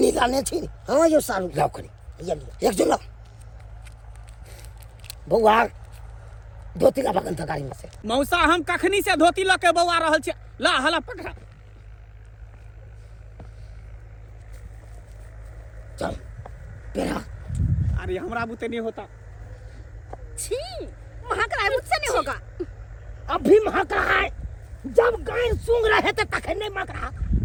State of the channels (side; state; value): both; identical; correlation 1.00